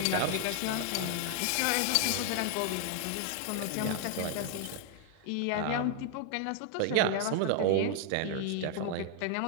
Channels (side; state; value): both; different; correlation 0.00